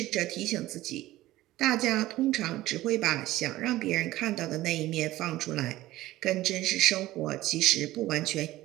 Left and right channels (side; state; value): left; quieter; 16.4 dB